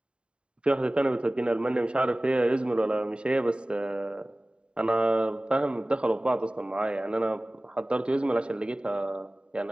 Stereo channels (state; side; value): late; left; 0.052 ms